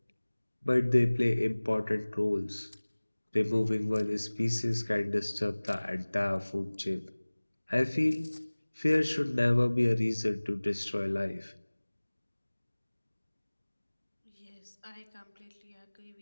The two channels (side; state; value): both; inverted; correlation -1.00